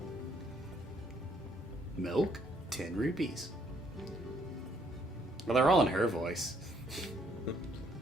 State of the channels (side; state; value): both; normal; correlation 0.68